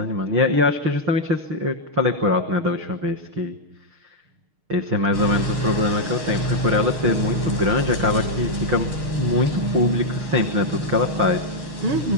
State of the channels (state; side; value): late; left; 6.4 ms